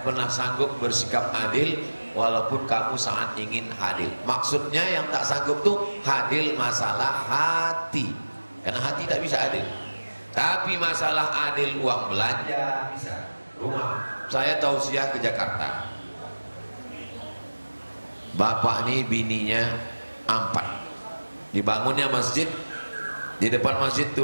pernah sanggup bersikap adil walaupun kamu sangat ingin adil. Maksudnya yang tak sanggup tuh adil masalah hati, karena hati tak bisa adil. Tapi masalah adil uang belanja bisa. Rumah saya tausiah ke Jakarta, bapak nih bininya 4, dibangunnya masjid, di depan masjid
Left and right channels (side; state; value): both; inverted; correlation -1.00